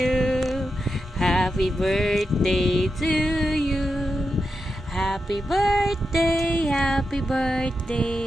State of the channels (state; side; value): normal; both; correlation 0.88